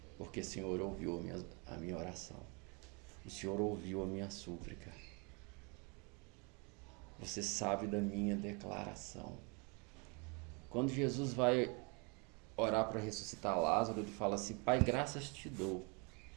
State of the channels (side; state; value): left; quieter; 31.9 dB